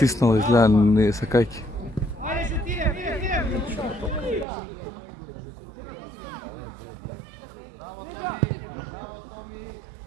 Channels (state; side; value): drops out; left; at 4.5 s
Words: изгледа, не сакајки. Ајде, шутире.